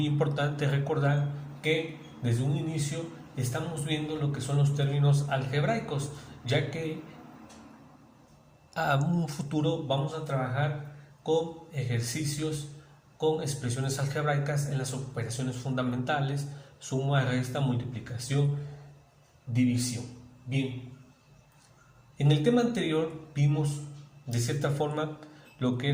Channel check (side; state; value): both; identical; correlation 1.00